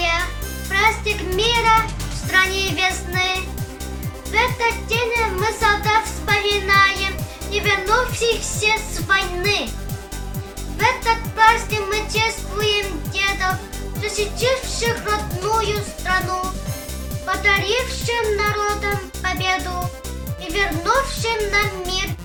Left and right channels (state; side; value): identical; both; correlation 1.00